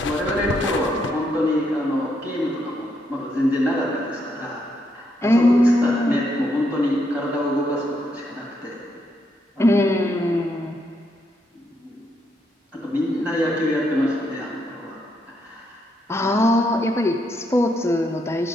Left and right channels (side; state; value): both; normal; correlation 0.77